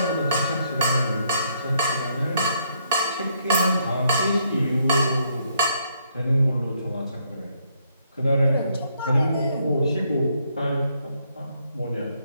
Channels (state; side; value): inverted; both; correlation -0.72